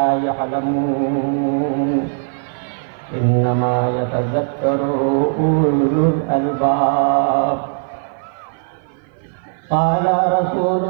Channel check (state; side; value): silent; left; 56 dB below the other